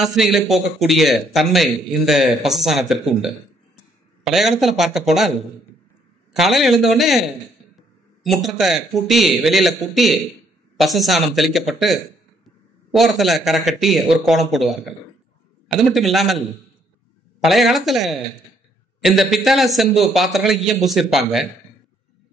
போக்கக்கூடிய தன்மை இந்த பசு சாணத்திற்கு உண்டு. பழைய காலத்துல பார்க்க போனால் காலையில் எழுந்தவுடனே முற்றத்தை கூட்டி வெளியில கூட்டி பசு சாணம் தெளிக்கப்பட்டு ஓரத்துல கரை கட்டி ஒரு கோலம் போடுவார்கள். அது மட்டும் இல்லாமல் பழைய காலத்துல இந்த பித்தளை செம்பு பாத்திரங்களை ஈயம் பூசியிருப்பாங்க.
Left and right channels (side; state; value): both; normal; correlation 0.68